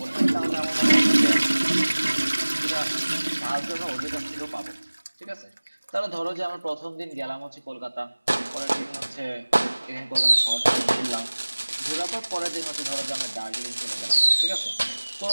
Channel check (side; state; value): both; inverted; correlation -1.00